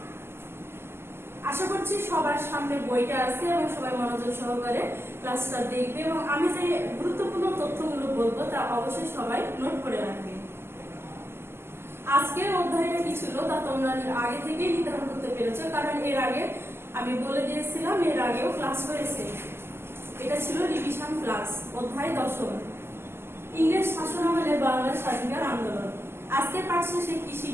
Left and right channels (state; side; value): late; left; 0.12 ms